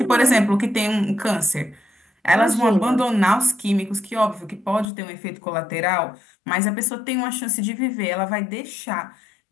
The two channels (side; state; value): right; drops out; at 4.9 s